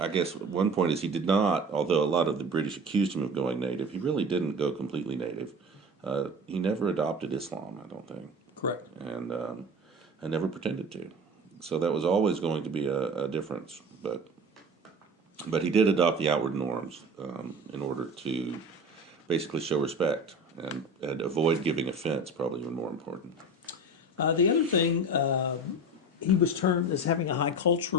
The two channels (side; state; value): both; normal; correlation 0.34